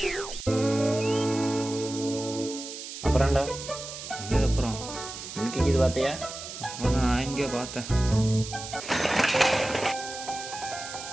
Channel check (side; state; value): right; noise; hiss, 10 dB below the sound